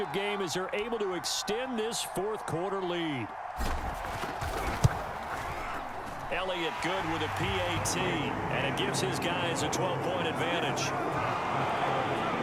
game as they're able to extend this 4th quarter lead. Elliott good with a PAT, and it gives his guys a 12-point advantage.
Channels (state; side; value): identical; both; correlation 1.00